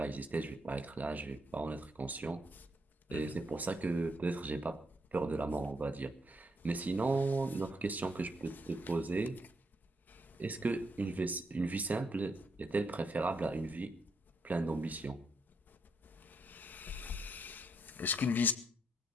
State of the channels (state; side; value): normal; both; correlation 0.76